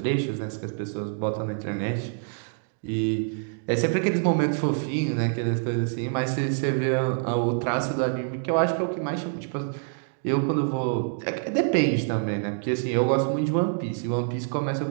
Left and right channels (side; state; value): left; silent; digital silence